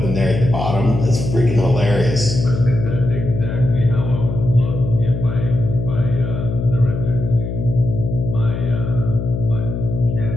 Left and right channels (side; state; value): left; noise; hum, 4 dB below the sound